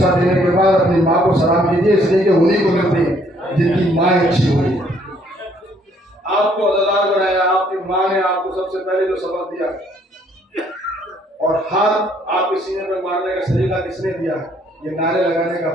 देने के बाद अपनी माँ को सलाम कीजिए, इसलिए कि उन्हीं को मिलते हैं जिनकी माँ अच्छी हुई। आपको अदादार बनाया, आपकी माँ ने आपको सबसे पहले जो सबक दिया और हाथ आपके सीने पर मारने का सलीका किसने दिया, ये नारे लगाने का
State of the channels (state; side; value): normal; both; correlation 0.65